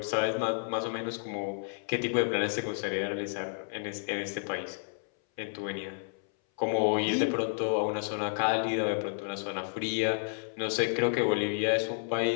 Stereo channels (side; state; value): right; silent; 57 dB below the other